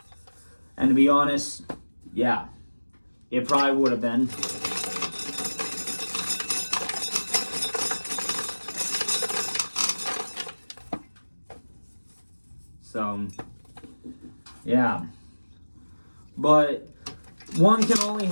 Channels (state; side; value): inverted; both; correlation -1.00